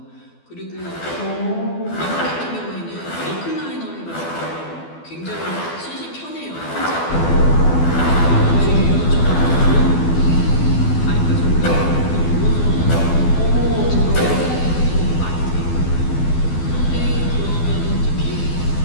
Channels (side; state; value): right; late; 12 ms